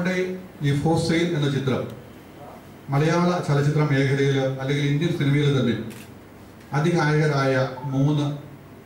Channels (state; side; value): identical; both; correlation 1.00